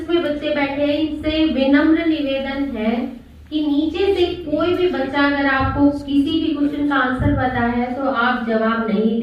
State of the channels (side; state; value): both; identical; correlation 1.00